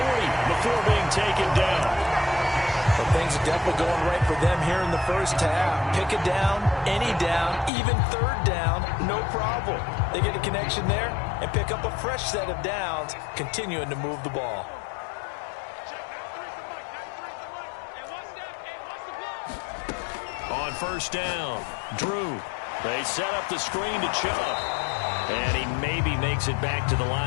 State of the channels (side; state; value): right; drops out; at 7.7 s